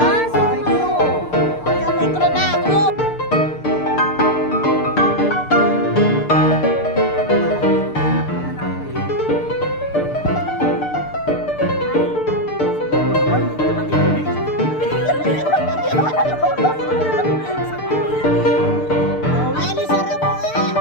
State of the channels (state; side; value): late; right; 6.7 ms